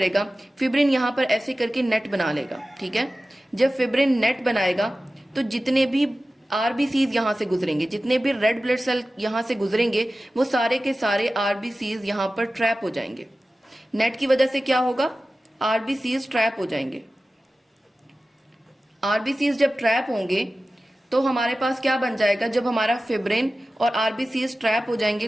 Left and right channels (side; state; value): both; normal; correlation 0.95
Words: फिब्रिन यहां पर ऐसे करके नेट बना लेगा। ठीक है, जब फिब्रिन नेट बनाएगा तो जितने भी आरबीसीज यहां से गुजरेंगे, जितने भी रेड ब्लड सेल यहां से गुजरेंगे, वो सारे के सारे आरबीसीज यहां पर ट्रैप हो जाएंगे। नेट की वजह से क्या होगा, आरबीसीज ट्रैप हो जाएंगे। आरबीसीज जब ट्रैप होंगे तो हमारे पास क्या बन जाएगा, जब हमारा फिब्रिन और आरबीसीज ट्रैप हो जाएंगे